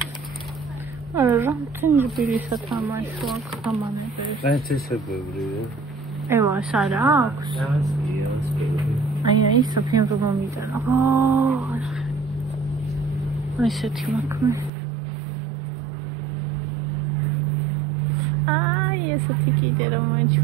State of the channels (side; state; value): left; drops out; at 14.7 s